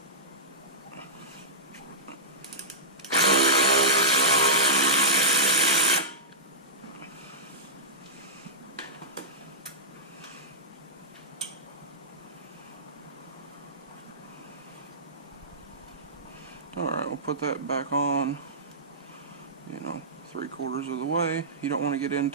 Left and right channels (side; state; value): both; normal; correlation -0.14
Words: Alright, we'll put that back on, 3/4 of the way. You don't want to get